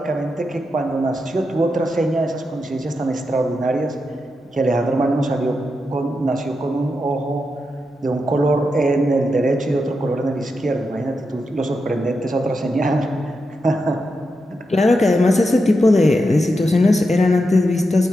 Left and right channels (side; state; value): both; normal; correlation 0.86